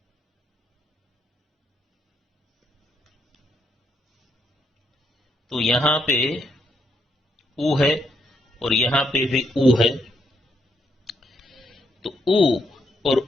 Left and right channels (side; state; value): both; normal; correlation 0.76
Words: तो यहां पे उ है और यहां पे भी उ है, तो उ और